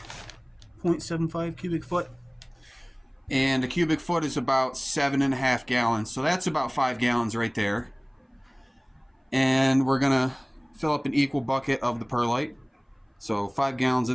0.75 cubic foot. And a cubic foot is about 7.5 gallons. So that's about 5 gallons right there. And we're going to fill up an equal bucket of the perlite. So 5 gallons of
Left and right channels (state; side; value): identical; both; correlation 1.00